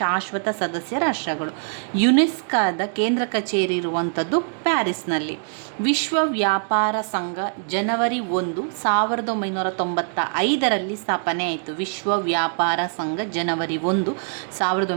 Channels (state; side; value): silent; left; digital silence